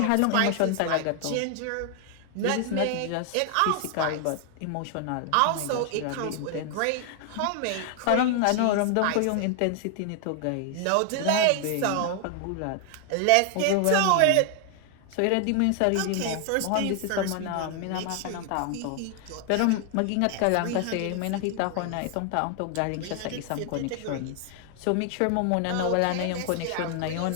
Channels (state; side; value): different; both; correlation 0.00